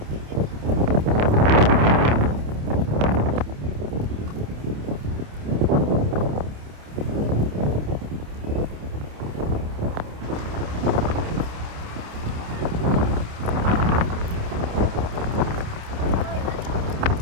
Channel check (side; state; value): left; late; 28 ms